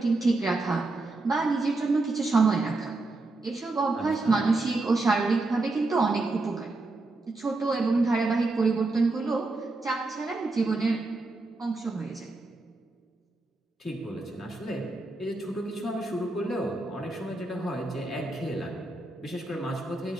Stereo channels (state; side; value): quieter; left; 3.1 dB